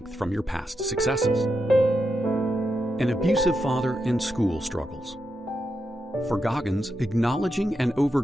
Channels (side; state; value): both; normal; correlation 0.85